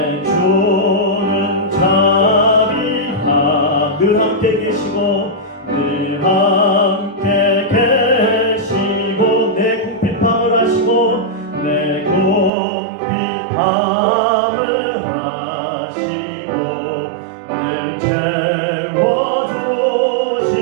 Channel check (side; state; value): left; drops out; at 12.5 s